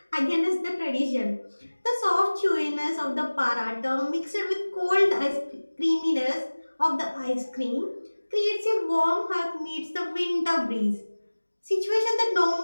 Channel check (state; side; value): inverted; both; correlation -1.00